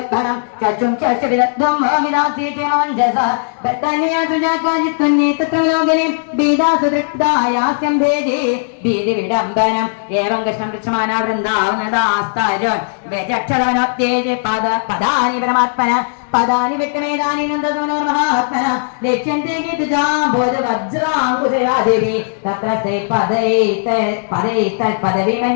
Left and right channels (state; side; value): silent; right; digital silence